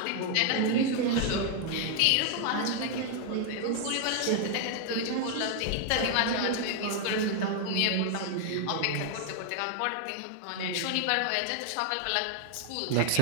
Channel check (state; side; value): different; both; correlation 0.00